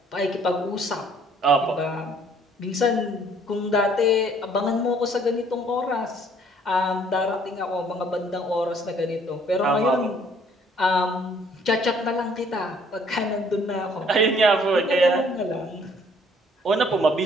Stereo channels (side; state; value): both; normal; correlation 0.60